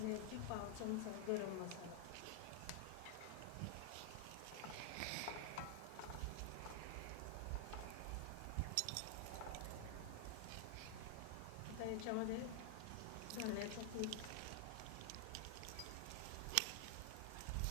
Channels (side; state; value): both; different; correlation 0.00